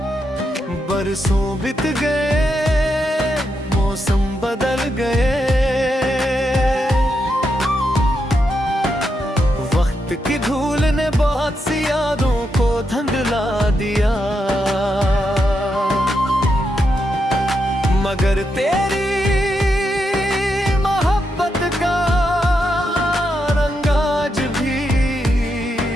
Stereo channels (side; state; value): both; normal; correlation 0.83